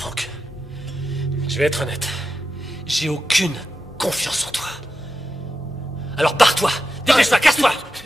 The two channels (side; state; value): both; normal; correlation 0.89